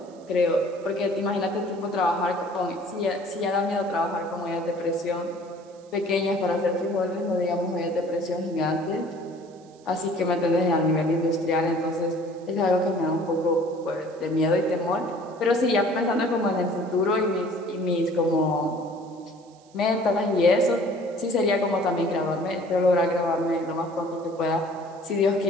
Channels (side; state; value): right; noise; hiss, 30 dB below the sound